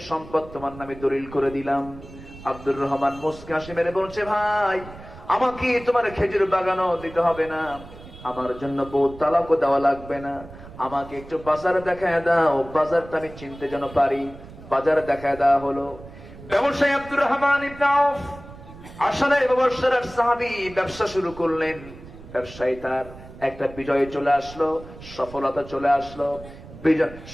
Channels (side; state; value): right; noise; rumble, 17 dB below the sound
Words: সম্পদ তোমার নামে দলিল করে দিলাম। আব্দুর রহমান মুস্কি হাসি মেরে বলছে, ভাই আমাকে তোমার খেজুর বাগানও দিতে হবে না, আমার জন্য বউ তালাকও দেওয়া লাগবে না, আমাকে একটু বাজার দেখায় দাও, বাজারটা আমি চিনতে যেন পারি। বাজার দেখায় দেওয়া হলো। ব্যবসায়ী আব্দুর রহমান ইবনে আউফ আসলে ব্যবসার সাহাবী ব্যবসা শুরু করলেন। ব্যবসায়ী তার একটা বিজয় চলে আসলো, সফলতা চলে আসলো,